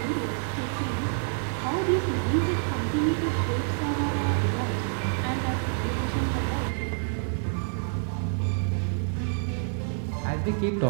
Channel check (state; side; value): silent; left; 60 dB below the other